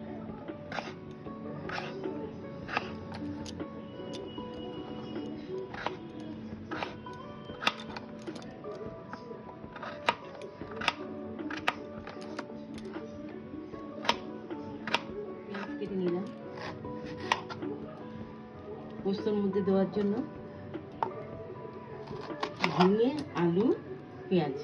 কেটে নিলাম পোস্তর মধ্যে দেওয়ার জন্য। ঝিঙে আলু পেঁয়াজ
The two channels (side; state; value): both; identical; correlation 1.00